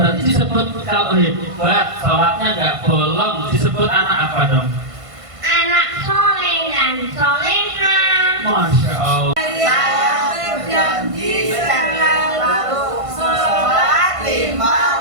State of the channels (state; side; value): late; left; 1.5 ms